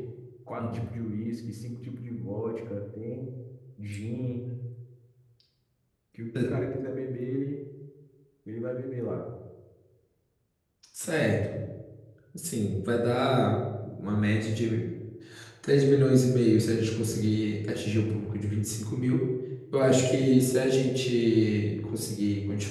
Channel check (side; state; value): both; identical; correlation 1.00